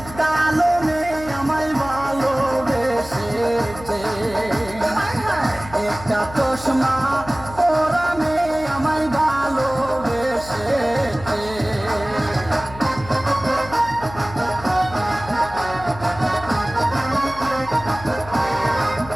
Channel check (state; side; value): noise; left; hum, 15 dB below the sound